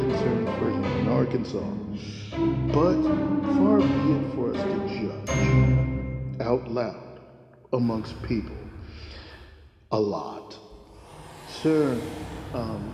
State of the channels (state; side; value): identical; both; correlation 1.00